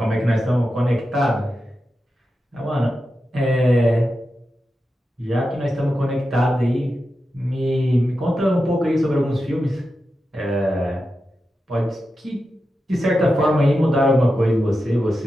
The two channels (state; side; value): normal; both; correlation 0.90